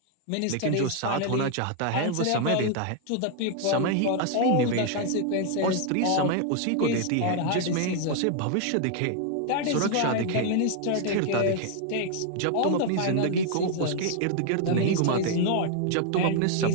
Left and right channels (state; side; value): different; both; correlation 0.00